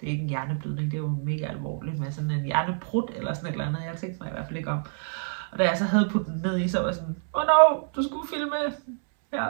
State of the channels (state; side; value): silent; left; 60 dB below the other